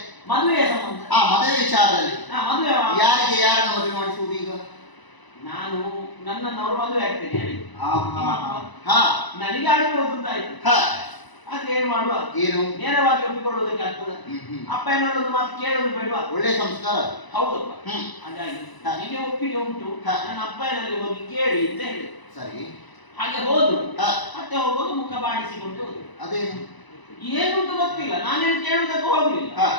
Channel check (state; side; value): late; right; 1.0 ms